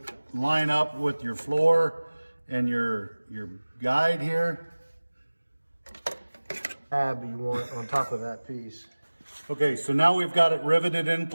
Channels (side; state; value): both; inverted; correlation -1.00